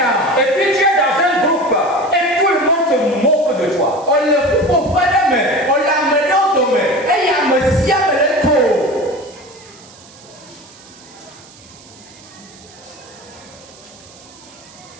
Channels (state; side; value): noise; right; hiss, 23 dB below the sound